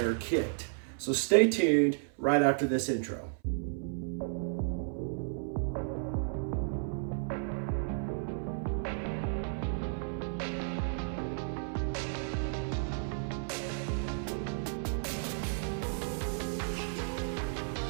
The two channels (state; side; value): silent; left; 56 dB below the other